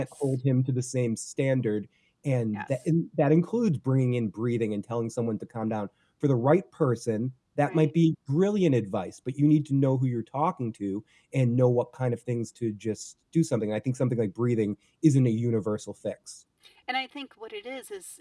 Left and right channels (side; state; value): both; identical; correlation 1.00